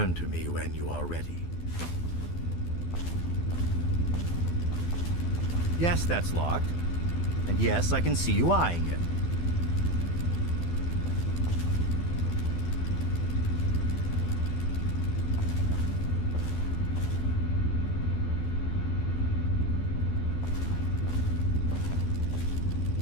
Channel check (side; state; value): right; late; 12 ms